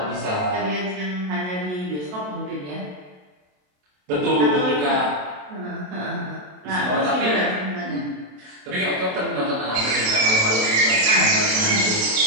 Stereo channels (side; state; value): left; late; 27 ms